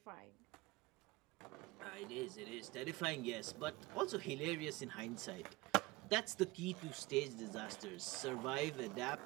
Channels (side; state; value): left; quieter; 21.7 dB